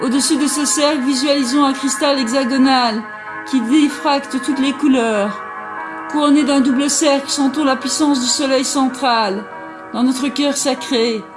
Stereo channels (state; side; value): identical; both; correlation 1.00